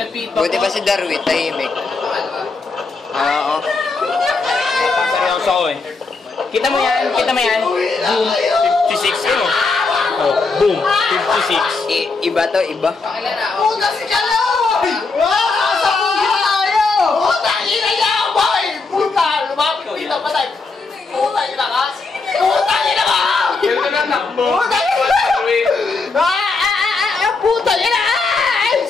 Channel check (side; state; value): right; quieter; 4.0 dB